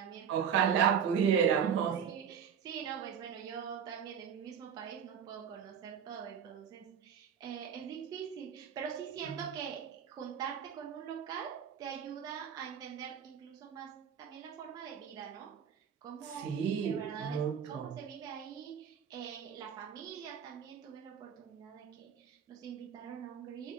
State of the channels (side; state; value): left; quieter; 7.9 dB